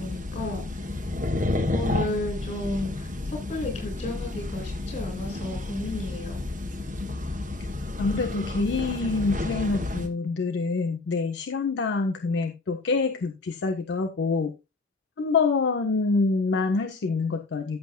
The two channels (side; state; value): right; quieter; 3.0 dB